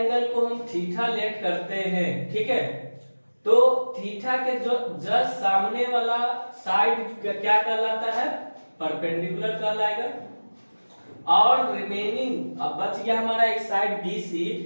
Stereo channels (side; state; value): both; inverted; correlation -1.00